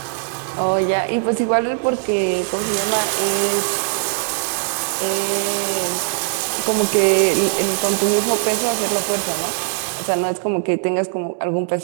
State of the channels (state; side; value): silent; left; 66 dB below the other